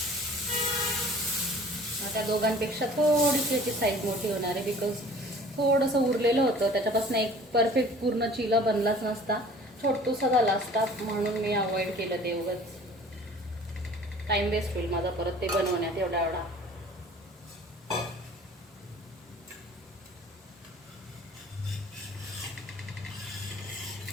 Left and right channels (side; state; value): both; normal; correlation 0.48